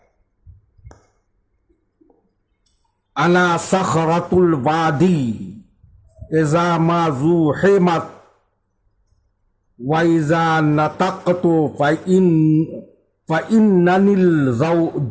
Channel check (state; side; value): identical; both; correlation 1.00